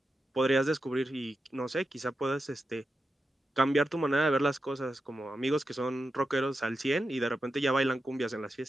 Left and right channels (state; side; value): normal; both; correlation 0.89